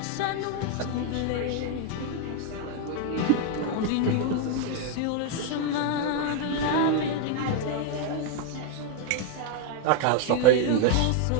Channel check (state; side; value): different; both; correlation 0.00